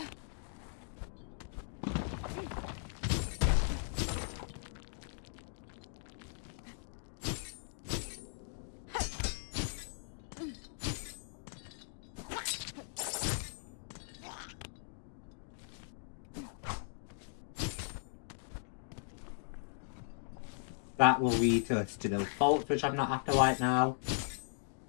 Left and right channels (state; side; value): silent; right; digital silence